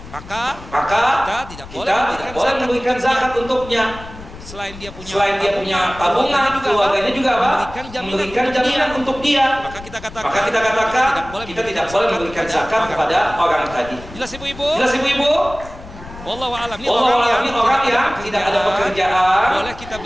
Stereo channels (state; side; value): noise; left; rumble, 15 dB below the sound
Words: Maka kita tidak boleh memberikan zakat untuknya. Selain dia punya tabungan, keluarganya juga memberikan jaminan untuk dia. Maka kita katakan kita tidak boleh memberikan zakat kepada orang tadi. Jelas ibu-ibu? Wallahu a'lam. Ini orang yang tidak ada pekerjaan,